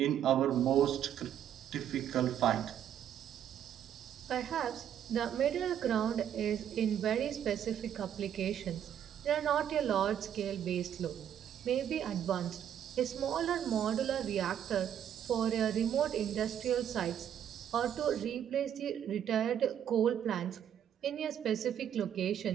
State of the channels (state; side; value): quieter; left; 9.7 dB